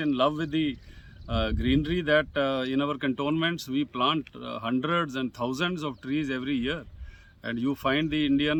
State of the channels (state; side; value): identical; both; correlation 1.00